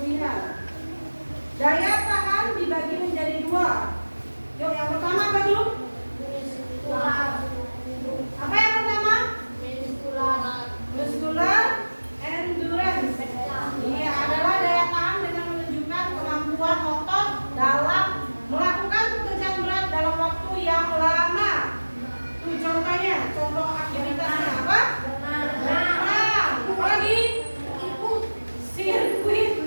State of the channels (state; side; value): inverted; both; correlation -1.00